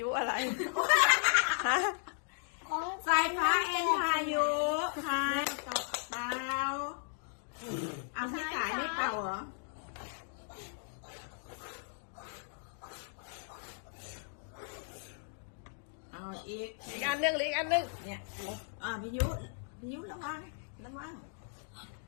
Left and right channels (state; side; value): silent; right; digital silence